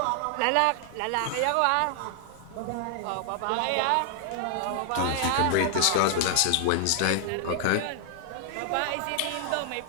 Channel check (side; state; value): both; different; correlation 0.00